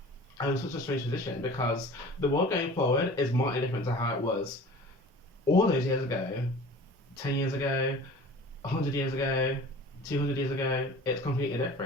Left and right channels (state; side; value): normal; both; correlation 0.42